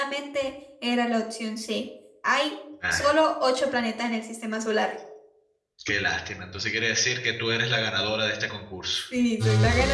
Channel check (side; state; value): both; identical; correlation 1.00